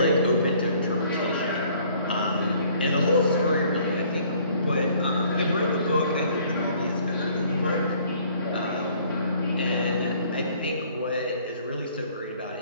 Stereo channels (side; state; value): both; inverted; correlation -0.58